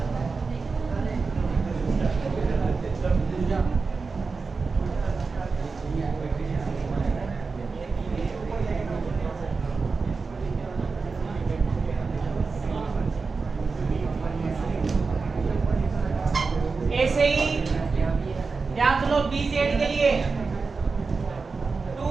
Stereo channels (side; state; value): left; quieter; 4.4 dB